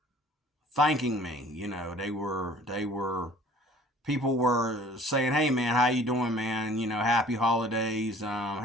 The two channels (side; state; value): both; normal; correlation 0.51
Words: thanking me. People were saying, hey man, how you doing, man? Happy holidays,